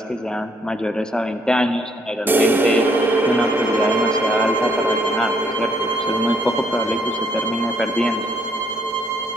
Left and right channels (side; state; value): both; normal; correlation 0.69